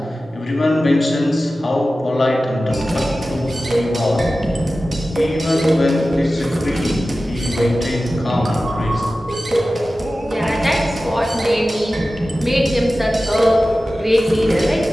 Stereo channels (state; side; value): normal; both; correlation 0.95